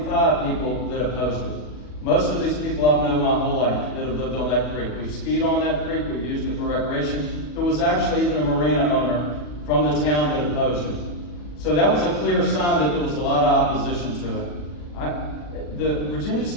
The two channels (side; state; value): right; late; 40 ms